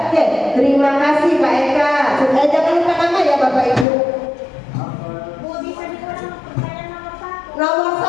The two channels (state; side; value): drops out; right; at 3.9 s